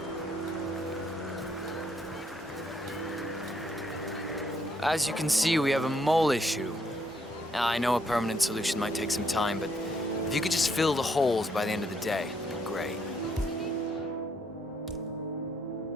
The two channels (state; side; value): normal; both; correlation 0.72